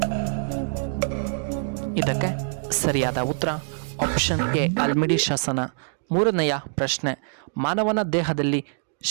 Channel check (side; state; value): left; silent; digital silence